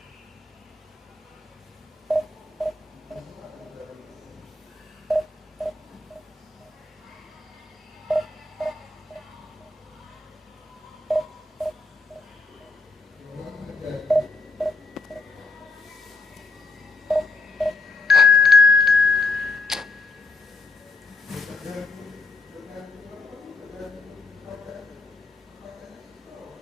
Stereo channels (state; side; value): quieter; right; 3.6 dB